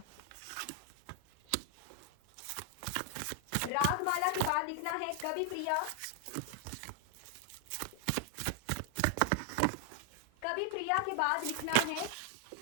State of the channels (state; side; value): different; both; correlation 0.00